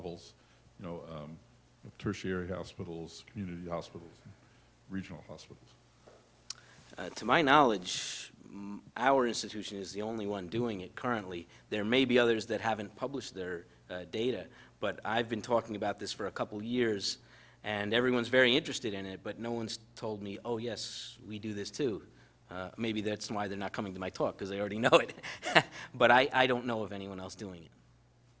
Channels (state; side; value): identical; both; correlation 1.00